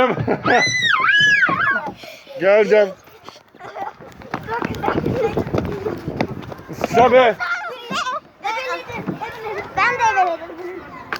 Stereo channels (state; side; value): identical; both; correlation 1.00